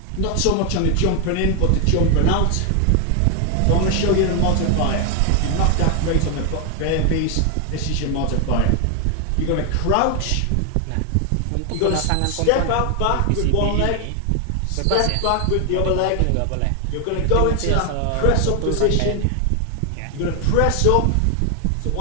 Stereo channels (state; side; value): different; both; correlation 0.00